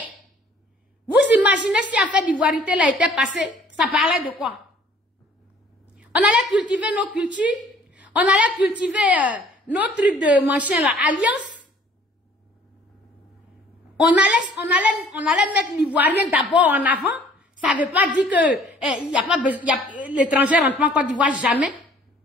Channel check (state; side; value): normal; both; correlation 0.55